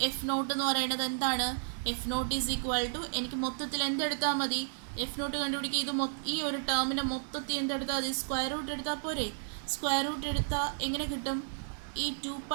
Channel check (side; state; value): left; silent; digital silence